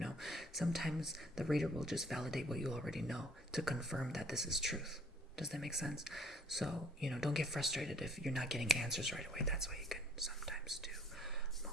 Sometimes the reader will just validate what you already know to confirm that this is truth. Does that make sense? So, don't get frustrated if you're not getting answers right away. That's why you can sometimes do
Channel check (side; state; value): both; normal; correlation 0.58